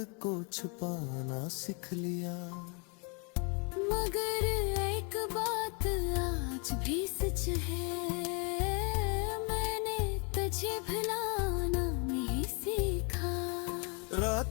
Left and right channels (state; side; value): quieter; right; 34.2 dB